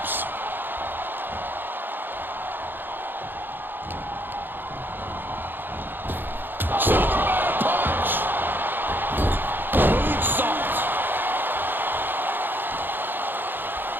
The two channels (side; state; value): left; late; 0.095 ms